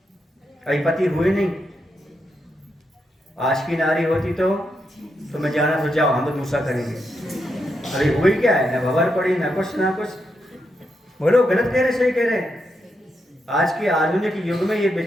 अभी पति हुए नहीं? आज की नारी होती तो मैं जाना तो जाओ, हम तो दूसरा करेंगे। अरे हुई क्या है, ना भवर पड़ी, ना कुछ ना कुछ। बोलो गलत कह रहे सही कह रहे? आज के आधुनिक युग में ये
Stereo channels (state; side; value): normal; both; correlation 0.83